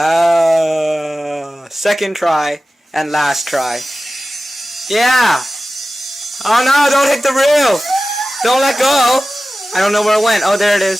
second try and last try. Yeah. Oh no, don't hit the roof. Don't let go. I don't know where it went. Oh, there it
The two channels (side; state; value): both; normal; correlation 0.95